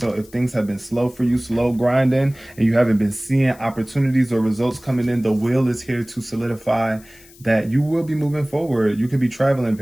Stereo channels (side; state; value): left; noise; hiss, 24 dB below the sound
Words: if things have been slow for you, slow grinding, and you haven't been seeing opportunities or results coming in, the wheel is here to solidify that you will be moving forward. You could be traveling